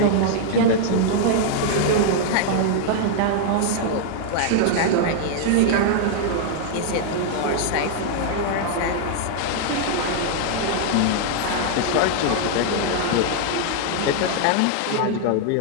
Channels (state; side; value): different; both; correlation -0.01